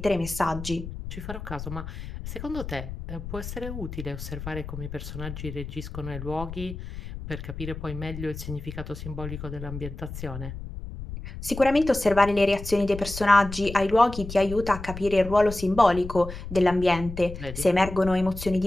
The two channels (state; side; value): noise; left; rumble, 10 dB below the sound